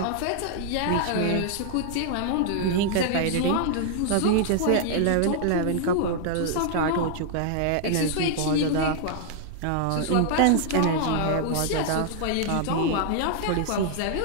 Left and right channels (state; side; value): different; both; correlation -0.01